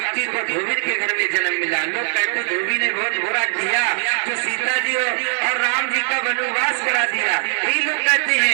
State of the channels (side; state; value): left; silent; digital silence